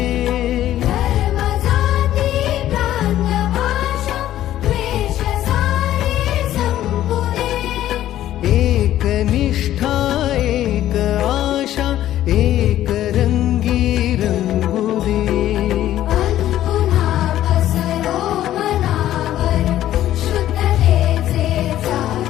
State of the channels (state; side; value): quieter; right; 12.9 dB